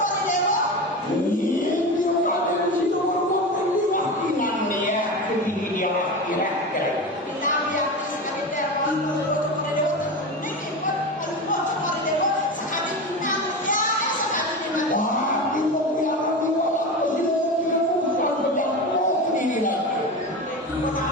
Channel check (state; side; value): normal; both; correlation 0.24